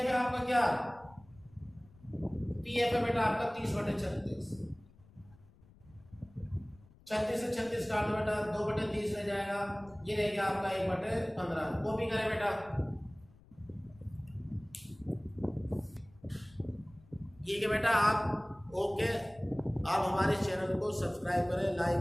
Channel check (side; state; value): left; noise; rumble, 26 dB below the sound